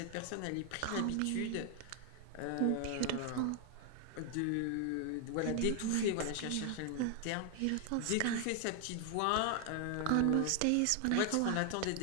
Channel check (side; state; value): both; different; correlation 0.00